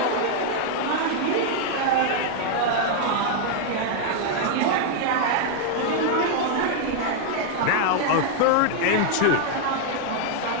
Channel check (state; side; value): different; both; correlation 0.00